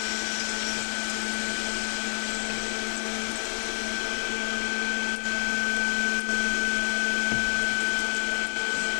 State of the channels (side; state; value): right; silent; digital silence